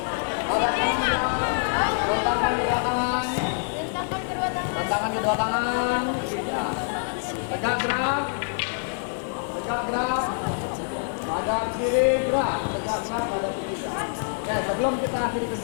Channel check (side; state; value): right; silent; digital silence